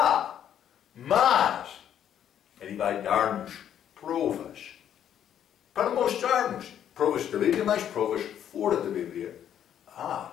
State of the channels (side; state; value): right; quieter; 9.9 dB